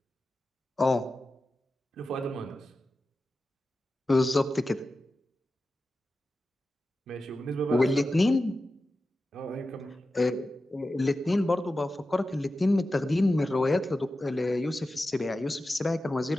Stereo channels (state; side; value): normal; both; correlation 0.93